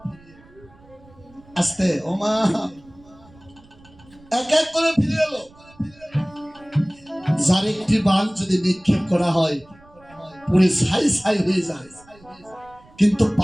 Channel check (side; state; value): right; noise; rumble, 26 dB below the sound